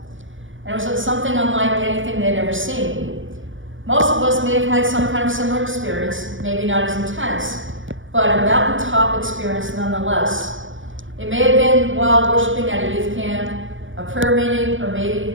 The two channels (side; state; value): left; late; 0.57 ms